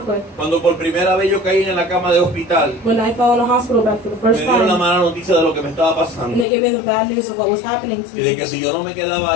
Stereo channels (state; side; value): drops out; right; at 6.5 s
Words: Cuando por primera vez yo caí en la cama de hospital, When I fell in a hospital bed for the me first dieron la time, mala noticia de lo que me estaba and pasando. they gave me the bad news of what was happening to Y de me, que si yo no me quedaba